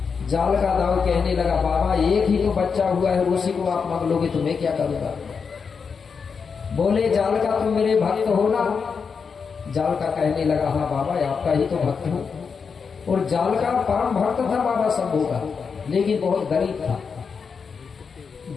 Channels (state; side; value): quieter; right; 5.7 dB